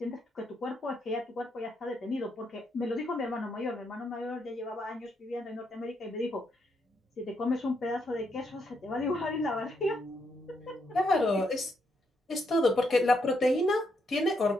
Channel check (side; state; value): both; normal; correlation 0.78